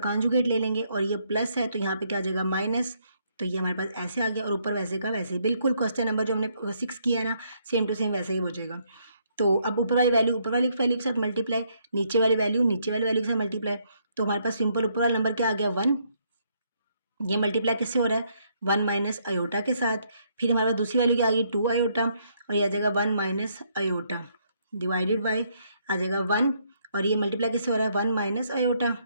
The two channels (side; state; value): both; inverted; correlation -0.72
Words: ले लेंगे, और ये प्लस है तो यहाँ पे क्या आ जाएगा माइनस, तो ये हमारे पास ऐसे आ गया, और ऊपर वैसे का वैसे ही बिल्कुल क्वेश्चन नंबर जो हमने 6 किया है ना, सेम टू सेम वैसे ही हो जाएगा। तो अब ऊपर वाली वैल्यू के साथ मल्टीप्लाई, नीचे वाली वैल्यू के साथ मल्टीप्लाई, तो हमारे पास सिंपल ऊपर वाला नंबर क्या आ गया 1। ये मल्टीप्लाई किससे हो रहा है 1 माइनस अयोटा के साथ। फिर हमारे पास दूसरी वैल्यू क्या आ गई 2 अयोटा, और ये आ जाएगा 1 माइनस अयोटा डिवाइडेड बाई आ जाएगा 1, और ये मल्टीप्लाई किससे हो रहा है 1 माइनस अयोटा,